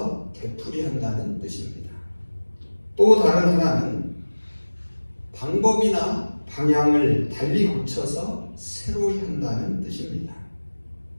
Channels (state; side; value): inverted; both; correlation -1.00